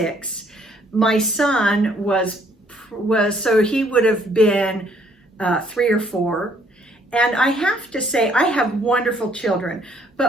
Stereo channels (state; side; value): normal; both; correlation 0.65